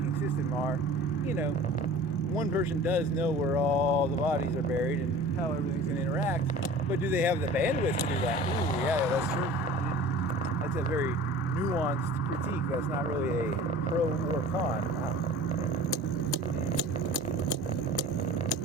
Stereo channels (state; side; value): normal; both; correlation 0.42